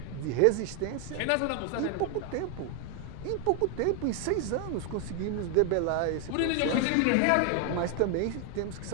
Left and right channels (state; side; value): different; both; correlation 0.00